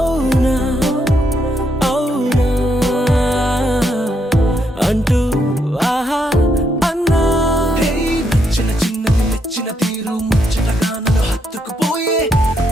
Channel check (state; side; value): normal; both; correlation 0.77